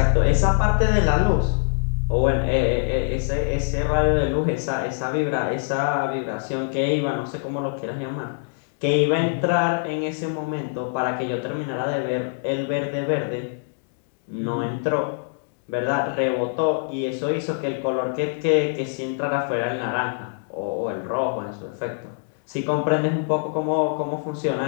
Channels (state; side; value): silent; right; digital silence